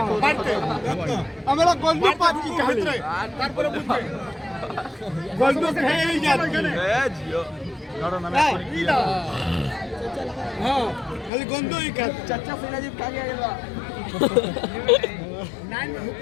আমরা গল্প পাচ্ছি তারপরে গল্প খেয়েই যাচ্ছি। হ্যাঁ খালি গন্ধই খাচ্ছে। চাচা ফিরাজি কাগে গেল।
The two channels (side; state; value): right; drops out; at 11.3 s